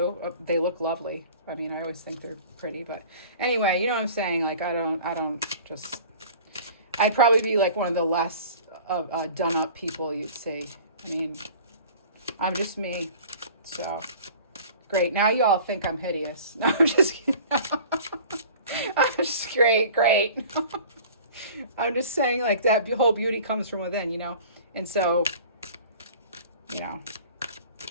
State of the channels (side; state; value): both; inverted; correlation -0.45